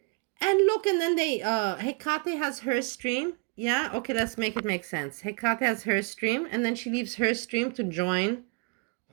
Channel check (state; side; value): quieter; left; 33.3 dB